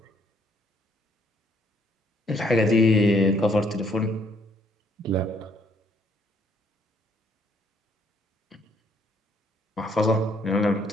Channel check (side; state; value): both; normal; correlation 0.67